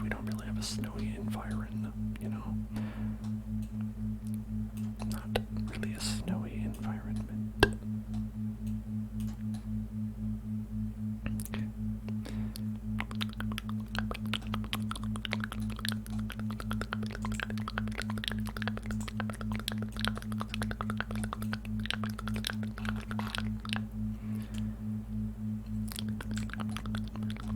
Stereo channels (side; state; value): both; identical; correlation 1.00